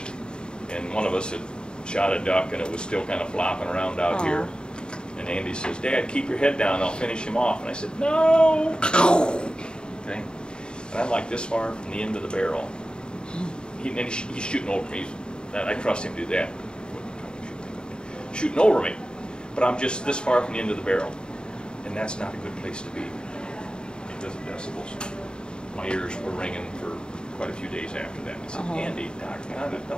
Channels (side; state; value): right; late; 0.049 ms